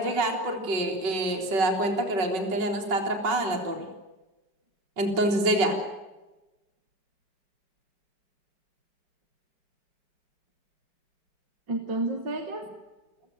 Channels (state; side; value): late; left; 5.3 ms